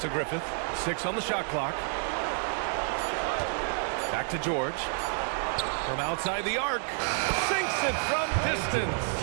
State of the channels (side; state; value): left; silent; 56 dB below the other